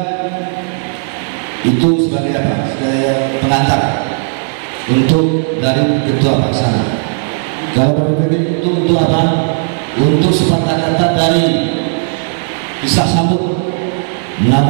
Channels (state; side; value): silent; left; 63 dB below the other